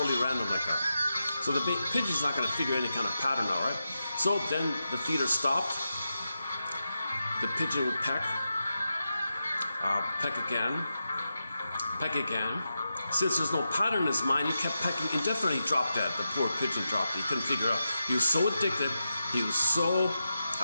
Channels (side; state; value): both; inverted; correlation -0.89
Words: random like that. So the pigeon's not going to figure any kind of pattern out, right? So then the feeder stopped. The pigeon would peck again. Since there's no pattern in his mind, he kept pecking indefinitely. He dropped dead. The poor pigeon dropped. He couldn't figure out. He was so addicted. He was so